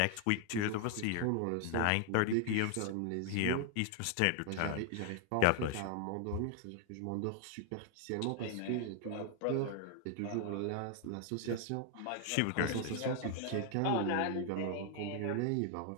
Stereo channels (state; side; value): different; both; correlation 0.00